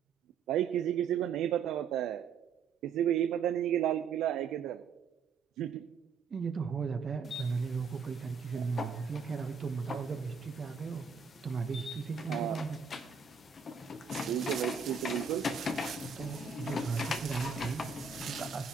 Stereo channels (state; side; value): quieter; left; 5.8 dB